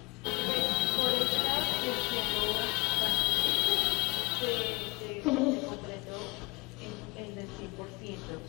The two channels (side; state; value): right; quieter; 25.7 dB